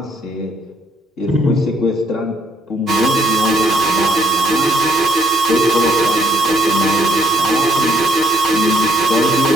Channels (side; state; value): both; normal; correlation 0.68